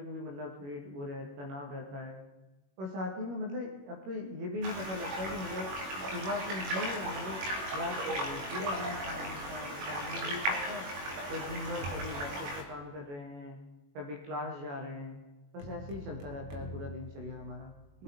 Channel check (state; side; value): late; left; 21 ms